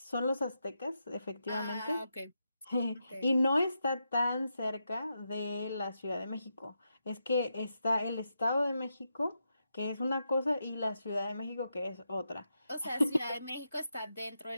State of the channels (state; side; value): inverted; both; correlation -0.85